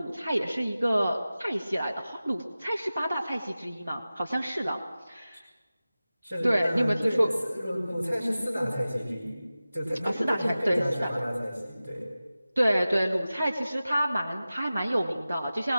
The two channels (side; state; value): both; inverted; correlation -0.96